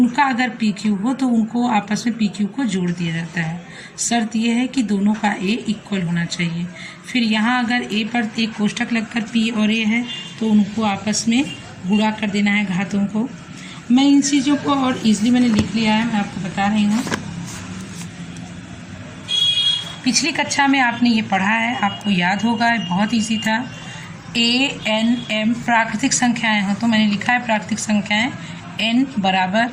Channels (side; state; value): both; identical; correlation 1.00